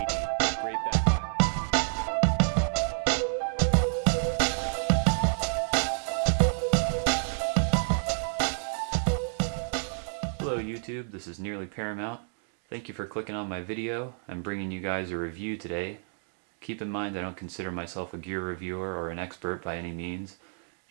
Great backpack. Hello YouTube, this is Nearly Paramount. Thank you for clicking on my video. I'm bringing you guys a review today. Keep in mind I don't consider myself a gear reviewer or an expert by any means.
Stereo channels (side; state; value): left; silent; digital silence